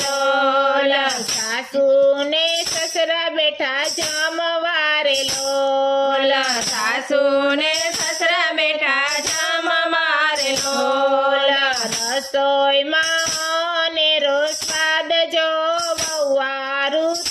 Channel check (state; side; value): identical; both; correlation 1.00